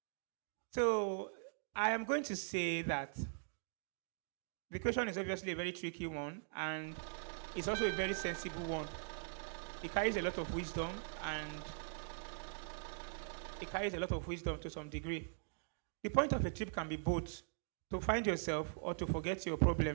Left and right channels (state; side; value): silent; left; digital silence